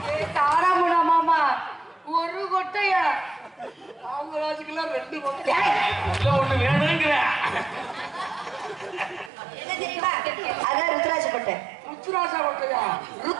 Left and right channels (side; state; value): left; drops out; at 9.3 s